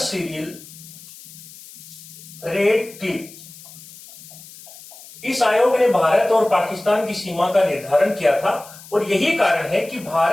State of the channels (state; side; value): noise; left; hiss, 18 dB below the sound